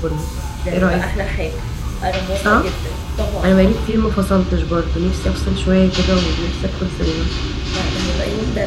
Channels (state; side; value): identical; both; correlation 1.00